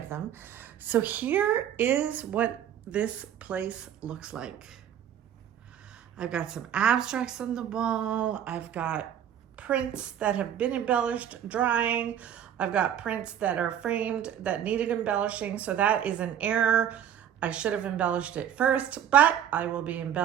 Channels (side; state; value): left; quieter; 9.8 dB